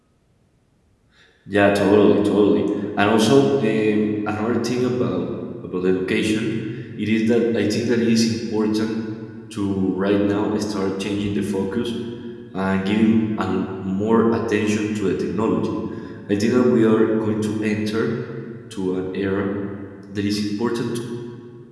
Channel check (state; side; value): identical; both; correlation 1.00